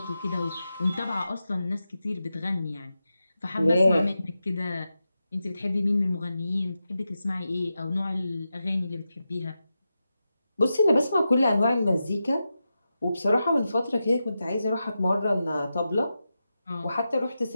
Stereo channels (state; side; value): inverted; both; correlation -0.90